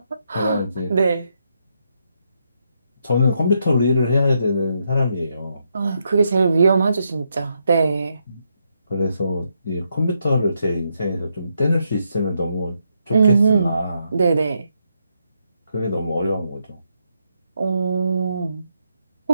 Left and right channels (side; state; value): both; inverted; correlation -0.79